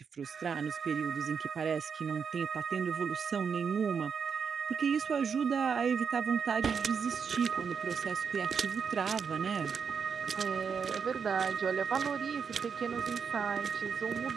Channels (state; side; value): quieter; left; 6.4 dB